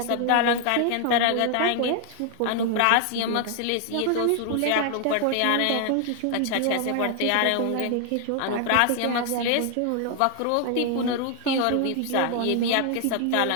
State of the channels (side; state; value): both; different; correlation 0.00